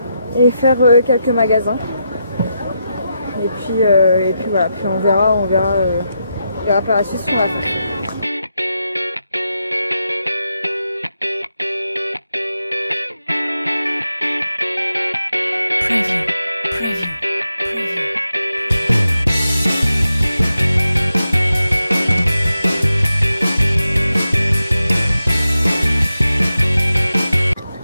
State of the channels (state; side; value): inverted; both; correlation -0.86